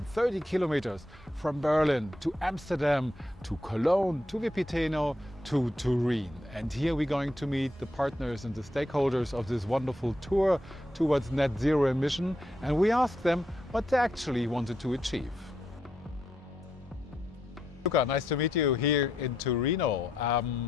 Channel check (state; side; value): normal; both; correlation 0.80